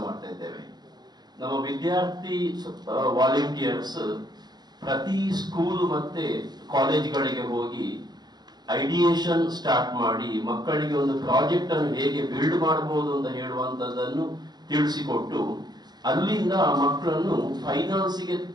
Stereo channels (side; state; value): left; late; 0.20 ms